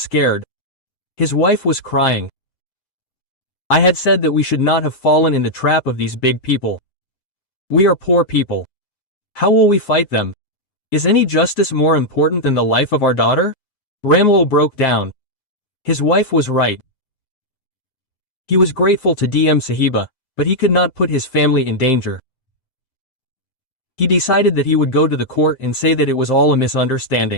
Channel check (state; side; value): late; right; 7.6 ms